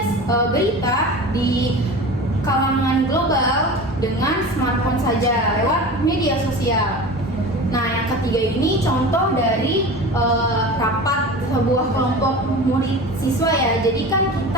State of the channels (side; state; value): both; normal; correlation 0.33